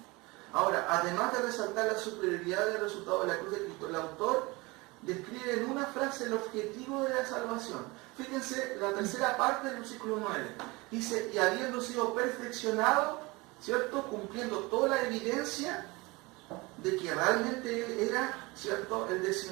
Ahora, además de resaltar la superioridad del resultado de la cruz de Cristo, el autor describe en una frase el objetivo de la salvación. Fíjense la tercera parte del versículo 9. Dice, y habiendo sido perfeccionado, ¿cierto? Cumpliendo toda la evidencia de que realmente Él era, ¿cierto? El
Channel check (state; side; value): quieter; left; 23.9 dB